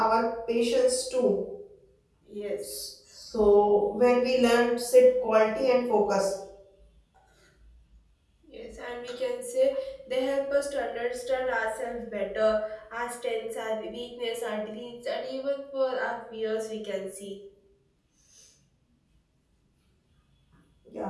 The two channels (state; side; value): identical; both; correlation 1.00